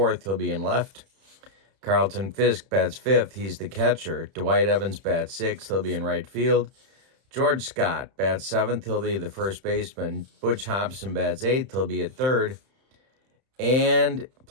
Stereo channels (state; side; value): late; left; 31 ms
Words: He'll be in left. Carlton Fisk bats fifth. He's the catcher. Dwight Evans bats sixth. He'll be in right field. George Scott bats seventh. He'll be the first baseman. Butch Hobson bats eighth. He'll be at third. And